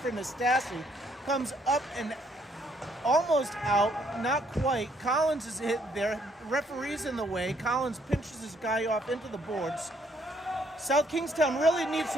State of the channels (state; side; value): normal; both; correlation 0.68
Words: Nastasi, comes up and almost out, not quite. Collins is hit there, referee's in the way. Collins pinches his guy off into the boards. South Kingstown really needs